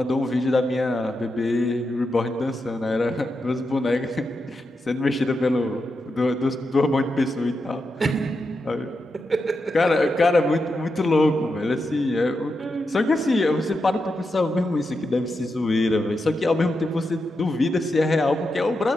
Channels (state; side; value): normal; both; correlation 0.87